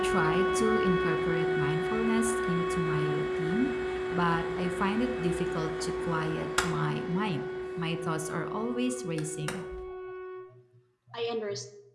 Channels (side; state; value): both; identical; correlation 1.00